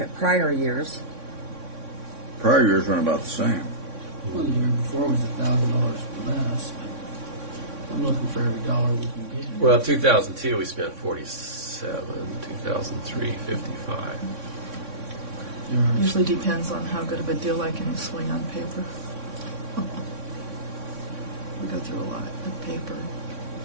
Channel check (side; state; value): left; late; 3.6 ms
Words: prior years, Prior years run about the same. Well, the year before was $1,000 less. I'm looking for every dollar we can get. Well, 2002 we spent 47, 2003 55. Usually depends on how good of a deal I can swing on paper. We go through a lot of paper,